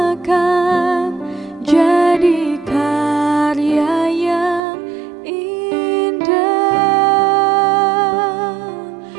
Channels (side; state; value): left; drops out; at 4.6 s